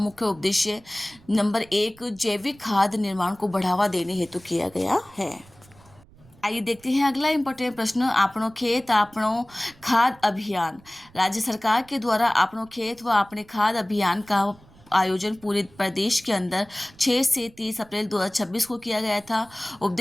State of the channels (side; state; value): right; noise; rumble, 26 dB below the sound